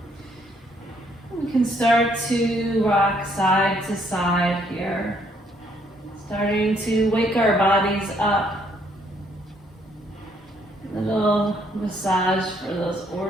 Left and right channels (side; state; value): both; normal; correlation 0.68